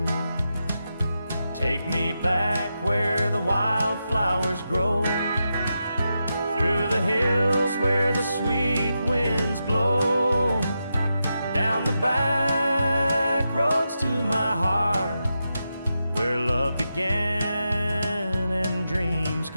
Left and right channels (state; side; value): inverted; both; correlation -0.87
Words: Take me back where the wildflowers grow, through the hills where the sweet winds blow, down the back roads to my heart, where love began and dreams